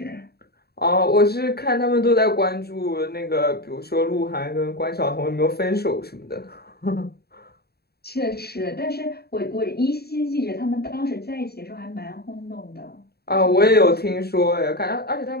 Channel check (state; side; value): late; right; 0.46 ms